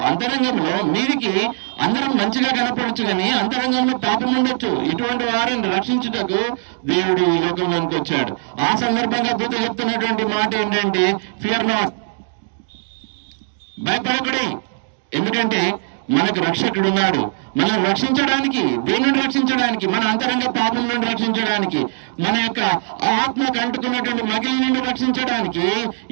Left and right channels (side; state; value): left; silent; 63 dB below the other